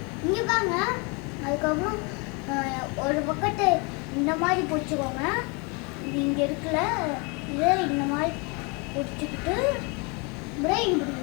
இங்கே பாங்க. அதுக்கப்புறம் ஒரு பக்கத்தை இந்த மாதிரி பிடிச்சிக்கோங்க. இது இங்கே இருக்குல்ல, இதை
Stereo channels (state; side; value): quieter; right; 31.2 dB